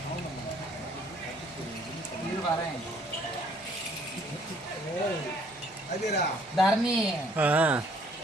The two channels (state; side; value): noise; left; hum, 30 dB below the sound